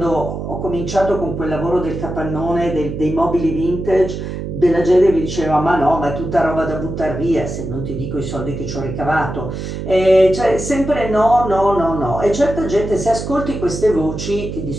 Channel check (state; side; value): noise; right; hum, 6 dB below the sound